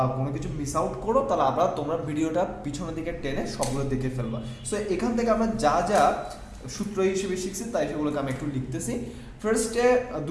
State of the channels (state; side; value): identical; both; correlation 1.00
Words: কোনো কিছু মিস আউট করো, তাহলে আবার তোমরা ভিডিওটা পিছনের দিকে টেনে সবগুলো দেখে ফেলবা। সো এখান থেকে আমরা যা যা সূত্র হিসেবে শিখছি তাই সেগুলোকে আমি একটু লিখতেছি। ফার্স্টে